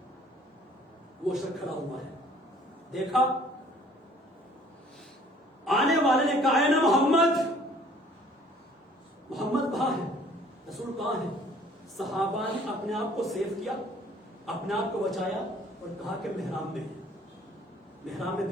وہ شخص کھڑا ہوا ہے. دیکھا آنے والے نے کہا ہے نا محمد کہاں ہے، رسول کہاں ہے. صحابہ نے اپنے آپ کو سیو کیا، اپنے آپ کو بچایا اور کہا کہ محراب میں ہے. محراب میں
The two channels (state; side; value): normal; both; correlation 0.56